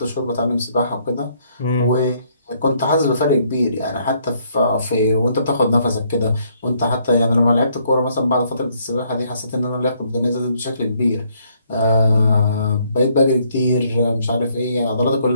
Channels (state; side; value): inverted; both; correlation -0.69